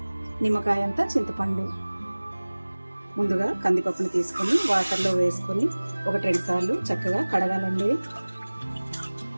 నిమ్మకాయ అంతా చింతపండు. ముందుగా కందిపప్పుని తీసుకొని వాటర్లో వేసుకొని 1-2 సార్లు చక్కగా కడగాలండి.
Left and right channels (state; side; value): inverted; both; correlation -1.00